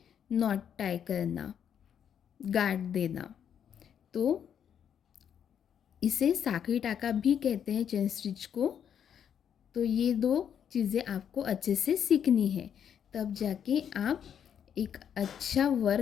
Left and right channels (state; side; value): quieter; right; 8.5 dB